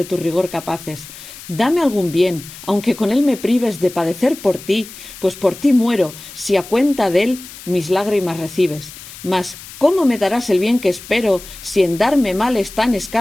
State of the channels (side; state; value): left; noise; hiss, 16 dB below the sound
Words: tu rigor capaces. Dame algún bien, aunque con él me prives de padecer por ti, pues por ti muero, si a cuenta de él mis lágrimas recibes. Mas ¿cómo me darás el bien que espero, si en darme males tan